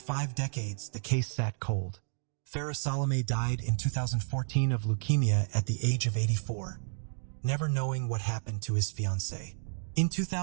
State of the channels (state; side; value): silent; left; digital silence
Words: decades, the case sat cold. Farah Salome died in 2014 of leukemia at the age of 84, never knowing what happened to his fiancée. In